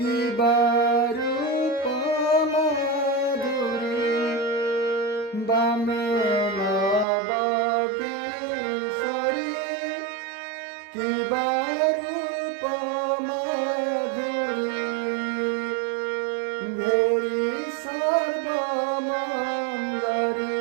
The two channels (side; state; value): left; drops out; at 7.1 s